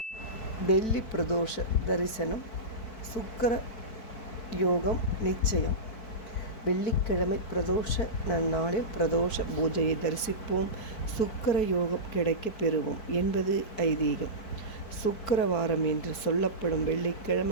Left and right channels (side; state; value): right; late; 4.6 ms